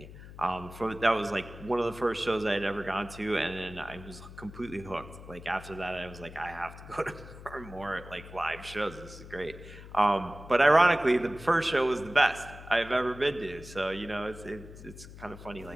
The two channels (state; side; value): noise; left; hum, 15 dB below the sound